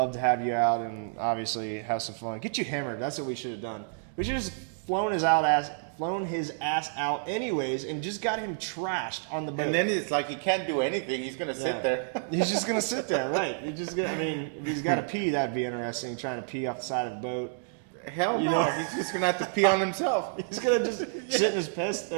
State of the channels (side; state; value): left; silent; digital silence